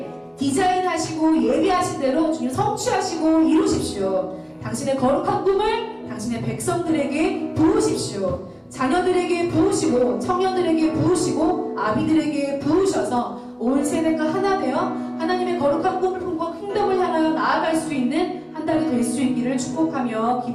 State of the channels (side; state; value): both; identical; correlation 1.00